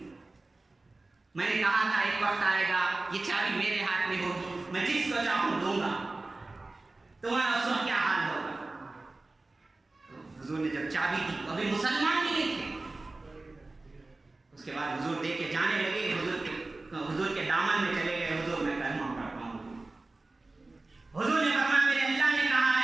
میں نے کہا تھا ایک وقت آئے گا یہ چابی میرے ہاتھ میں ہوگی، میں جس کو چاہوں دوں گا، تمہارا اس وقت کیا حال ہوگا؟ حضور نے جب چابی دی، ابھی مسلمان بھی نہیں تھے، اس کے بعد حضور دے کے جانے لگے، حضور کے دامن میں چلے گئے، حضور میں کلمہ پڑھتا ہوں۔ حضور نے فرمایا میرے اللہ نے کہا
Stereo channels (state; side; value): quieter; left; 3.2 dB